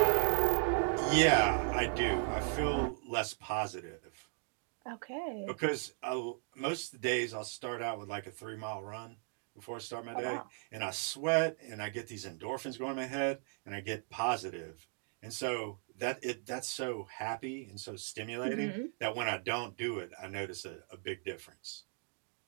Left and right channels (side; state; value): left; silent; 53 dB below the other